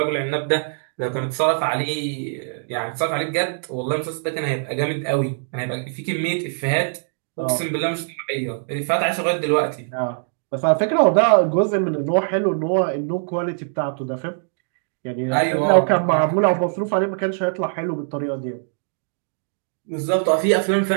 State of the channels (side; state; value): left; silent; digital silence